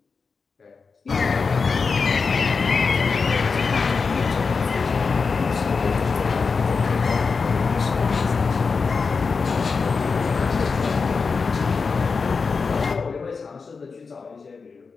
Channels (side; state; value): right; quieter; 4.9 dB